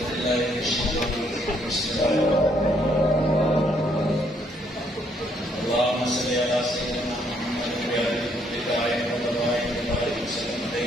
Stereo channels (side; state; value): both; normal; correlation 0.70